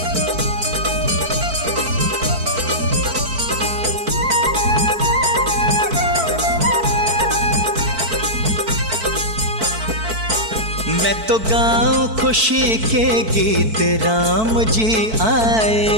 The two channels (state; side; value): late; left; 4.5 ms